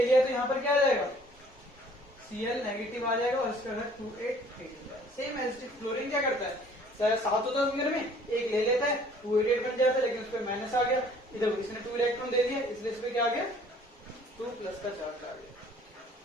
लिया, तो यहाँ पर क्या आ जाएगा, Cl नेगेटिव आ जाएगा, और इसका घर 2 8 8 हो जाएगा। सेम एज क्लोरीन क्या करता है, 7 होता है घर में, एक ले लेता है, 2 8 8 बन जाता है, लेकिन उस पर माइनस आ गया, इधर इसने 2 इलेक्ट्रॉन दे दिया, इसलिए इस पर क्या आ गया, 2 प्लस का चार्ज आ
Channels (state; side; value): normal; both; correlation 0.55